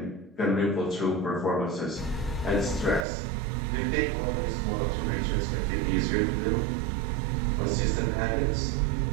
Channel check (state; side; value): drops out; left; at 3.1 s